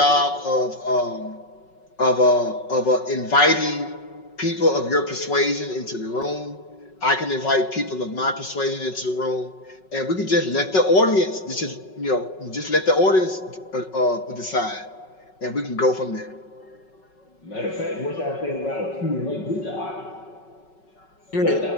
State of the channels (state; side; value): late; right; 5.4 ms